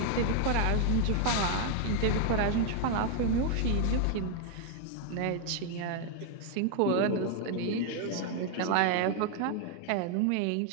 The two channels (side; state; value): both; different; correlation 0.00